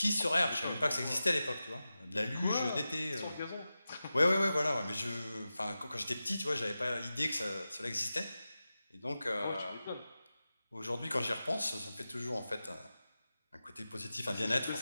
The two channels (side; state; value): both; inverted; correlation -0.93